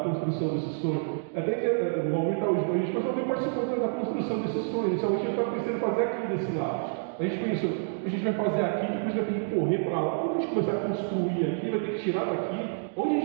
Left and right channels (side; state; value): left; silent; digital silence